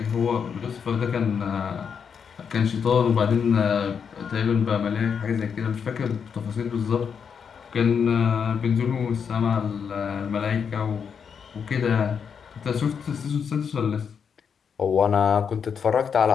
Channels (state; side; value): quieter; right; 6.8 dB